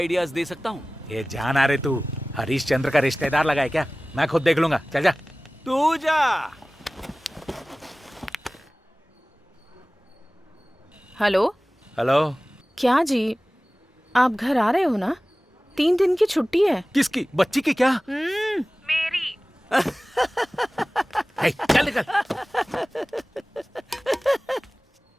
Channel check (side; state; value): both; normal; correlation 0.98